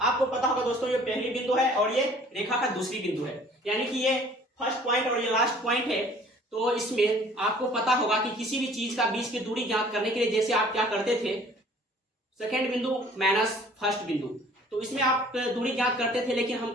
पता होगा दोस्तों, ये पहली बिंदु है और ये रेखा का दूसरी बिंदु है, यानी कि ये फर्स्ट पॉइंट और ये लास्ट पॉइंट है। तो इसमें आपको पता होगा कि किसी भी चीज का बीच की दूरी ज्ञात करने के लिए जैसे आप क्या करते थे, सेकेंड बिंदु माइनस फर्स्ट बिंदु, तो इसमें आप दूरी ज्ञात करते थे। लेकिन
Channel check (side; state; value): both; normal; correlation 0.53